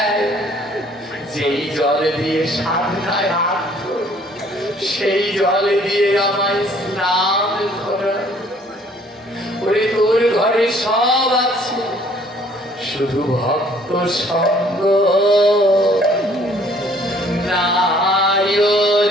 যেই জল দিয়ে সাধনায় হাত ধরে, সেই জল দিয়ে আমায় স্নান করায়। ওরে, তোর ঘরে সব আছে, শুধু ভক্ত সঙ্গ নাই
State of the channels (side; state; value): both; normal; correlation 0.59